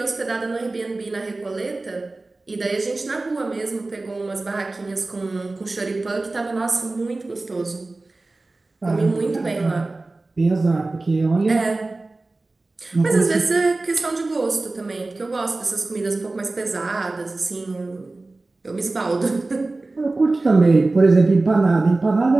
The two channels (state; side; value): quieter; left; 3.2 dB